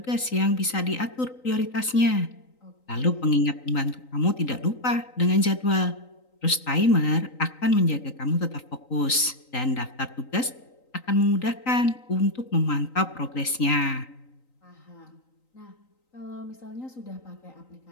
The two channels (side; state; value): right; late; 3.9 ms